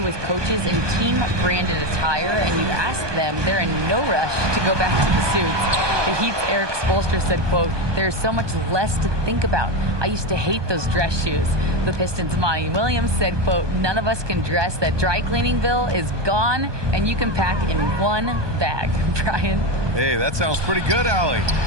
with coaches in team-branded attire, and you ask them, they're in no rush to go back to the suits. The Heat's Eric Spoelstra said, quote, "There's so much less to think about. I used to hate those dress shoes." The Pistons' Monty Williams said, quote, "None of us can dress. That dry cleaning bill is gone, and you can pack in one bag." Brian? Hey, that sounds pretty good, Allie.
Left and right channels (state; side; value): late; left; 1.2 ms